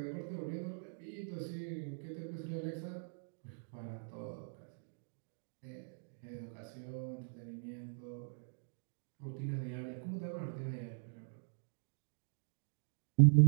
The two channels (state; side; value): silent; left; digital silence